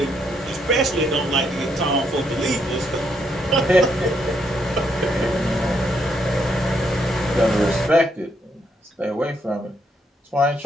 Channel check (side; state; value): both; normal; correlation 0.75